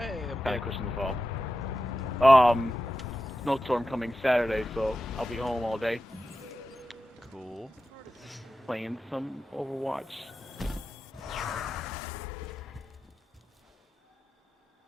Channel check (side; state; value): both; normal; correlation 0.92